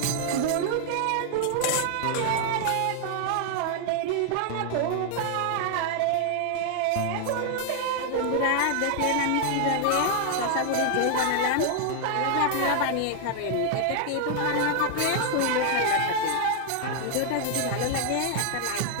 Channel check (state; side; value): different; both; correlation 0.00